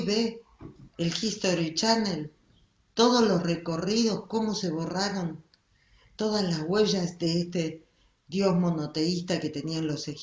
el History Channel, todos los recorridos, cómo se borraron todas las huellas de este dios monoteísta que tenían los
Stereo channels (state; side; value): identical; both; correlation 1.00